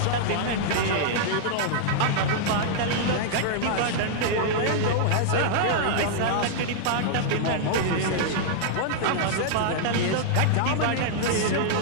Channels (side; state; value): both; different; correlation -0.01